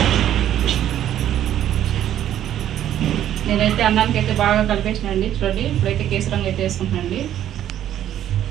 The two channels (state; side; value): quieter; left; 11.3 dB